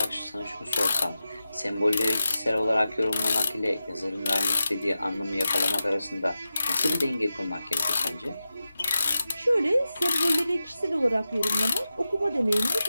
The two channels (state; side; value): inverted; both; correlation -0.92